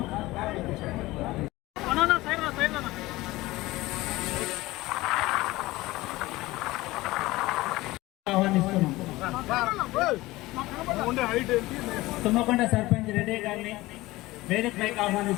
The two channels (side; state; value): right; quieter; 19.1 dB